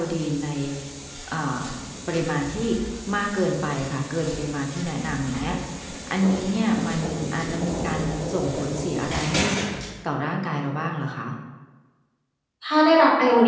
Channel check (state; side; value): identical; both; correlation 1.00